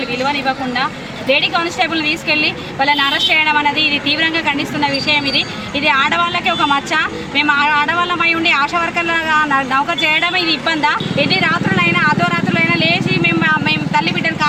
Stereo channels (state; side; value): noise; left; rumble, 28 dB below the sound